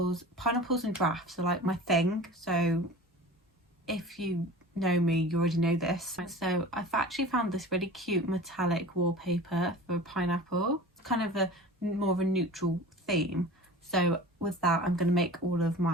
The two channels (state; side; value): normal; both; correlation 0.38